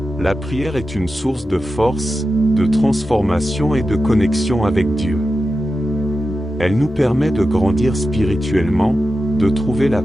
la prière est une source de force, de transformation et de connexion avec Dieu. Elle nous permet de grandir spirituellement, de trouver la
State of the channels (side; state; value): both; normal; correlation 0.91